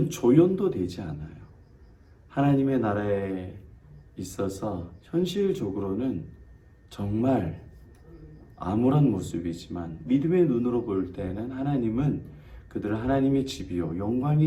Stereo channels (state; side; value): identical; both; correlation 1.00